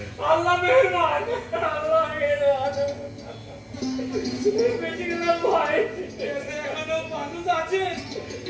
আল্লাহ মেহেরবান, আল্লাহ মেহেরবান, বেঁচে গেলাম ভাই। এখনো মানুষ আছে?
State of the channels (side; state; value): both; identical; correlation 1.00